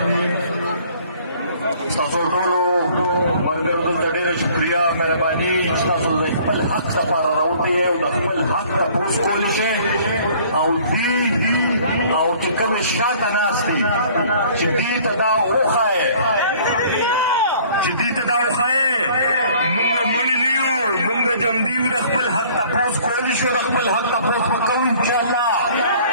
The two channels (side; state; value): both; inverted; correlation -0.54